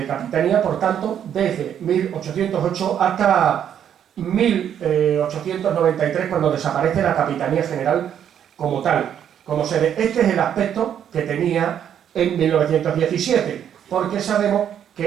capitanía. Por tanto, desde 1808 hasta 1893, cuando desaparece la capitanía general como tal, como sede. Este es el aspecto que tenía en 1917, porque sabemos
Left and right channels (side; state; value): left; quieter; 9.3 dB